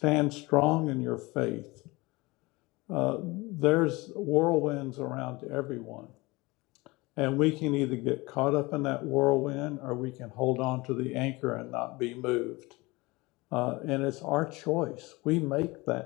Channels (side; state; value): right; quieter; 23.1 dB